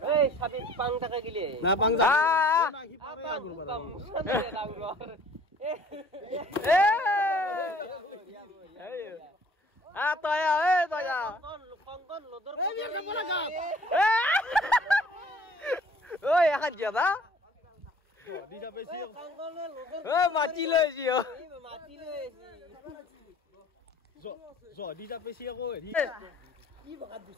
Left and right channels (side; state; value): both; normal; correlation 0.53